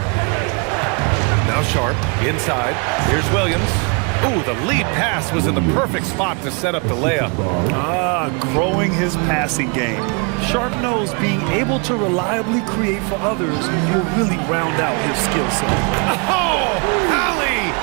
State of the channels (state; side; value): quieter; left; 34.6 dB